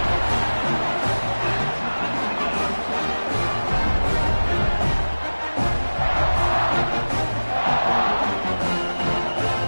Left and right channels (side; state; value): both; inverted; correlation -1.00